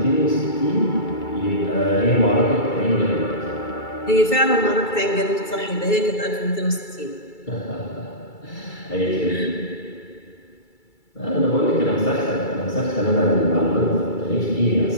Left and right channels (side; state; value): right; late; 2.3 ms